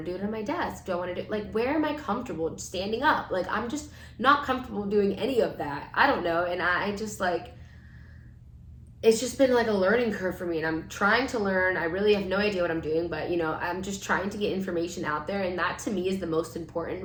to do it on my desk? Do I want to do like where am I comfortable standing up? Like I'm just not comfortable doing any of that. I don't know. And I just like it's just been like a learning curve for me, and I'm trying to learn. I really have no idea what I'm doing, but I'm just trying to get information out there, and that to me is the most important.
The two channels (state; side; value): identical; both; correlation 1.00